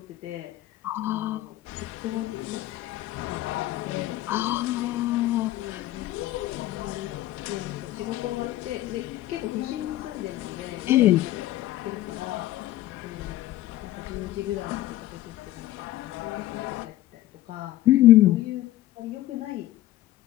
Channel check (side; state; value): right; quieter; 15.2 dB